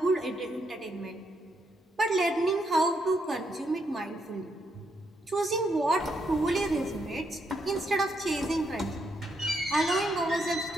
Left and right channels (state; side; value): normal; both; correlation 0.78